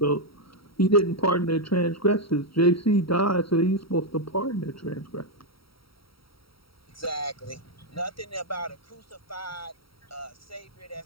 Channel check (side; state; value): right; late; 0.75 ms